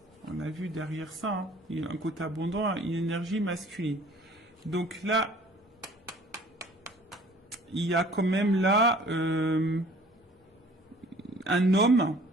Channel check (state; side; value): normal; both; correlation 0.52